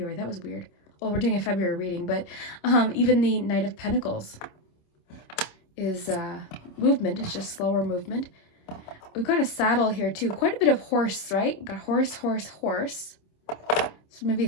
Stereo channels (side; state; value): right; late; 26 ms